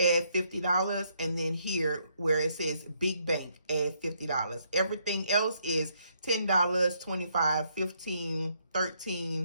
$50, and then here where it says big bank, add $50. Everything else is $10, $25, $15,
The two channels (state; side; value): inverted; both; correlation -0.73